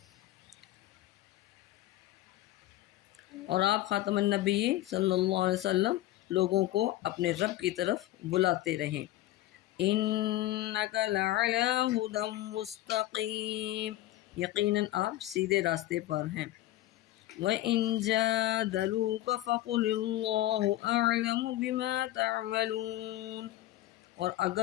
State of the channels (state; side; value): quieter; right; 15.3 dB